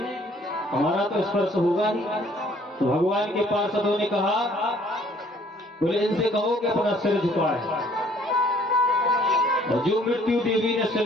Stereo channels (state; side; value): normal; both; correlation 0.59